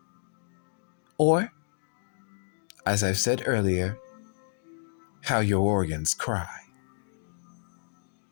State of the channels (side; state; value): right; silent; digital silence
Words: Or, as I've said earlier, how your organs cry.